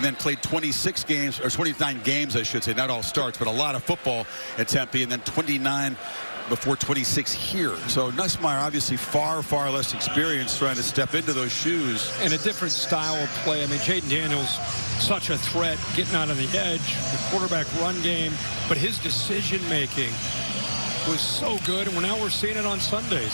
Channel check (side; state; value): both; inverted; correlation -1.00